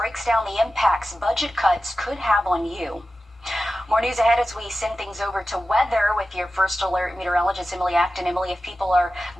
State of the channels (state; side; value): normal; both; correlation 0.93